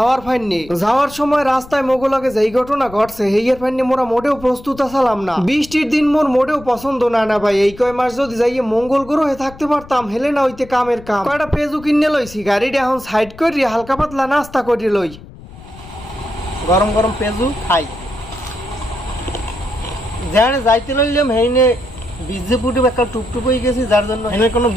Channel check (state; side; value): noise; left; rumble, 18 dB below the sound